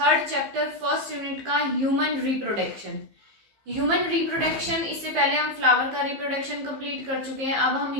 chapter first unit का ह्यूमन रिप्रोडक्शन। ह्यूमन रिप्रोडक्शन, इससे पहले हम फ्लावर का रिप्रोडक्शन कंप्लीट कर चुके हैं। अब हम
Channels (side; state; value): left; late; 15 ms